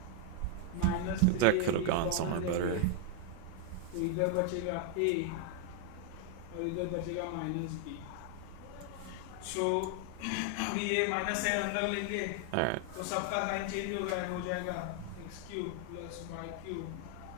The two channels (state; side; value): different; both; correlation 0.00